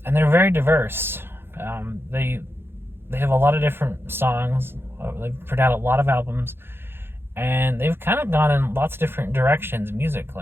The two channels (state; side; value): late; left; 0.11 ms